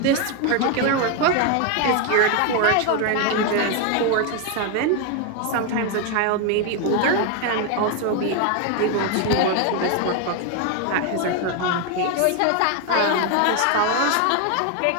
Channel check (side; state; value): both; different; correlation 0.01